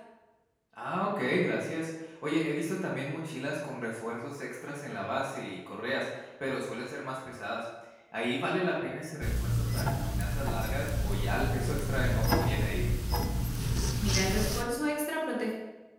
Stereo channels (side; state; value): both; identical; correlation 1.00